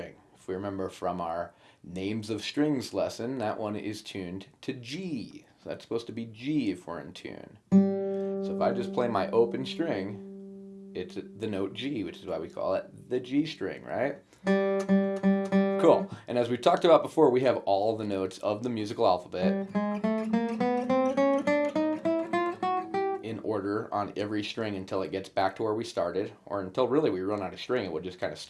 if we remember from our names of strings lesson, that one is tuned to G. So that's supposed to be G if we're in tune. So if I just play my open string, it's the note G, which is why we call it the G string, right? Cool. And as we talked about before, we have all the notes of the musical alphabet in order on every string until it gets back to where we started, or until really we run out of string, it would just kind of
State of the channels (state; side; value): identical; both; correlation 1.00